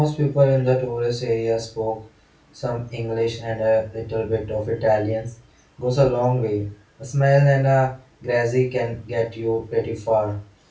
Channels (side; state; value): both; identical; correlation 1.00